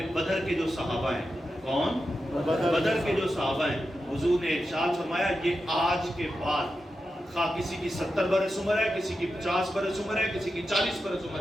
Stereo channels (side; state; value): both; normal; correlation 0.89